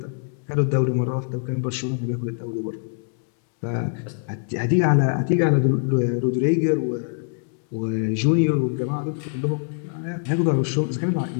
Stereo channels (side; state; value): right; silent; 63 dB below the other